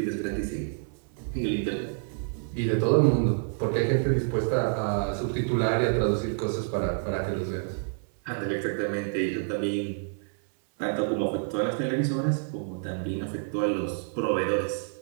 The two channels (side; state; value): left; silent; 59 dB below the other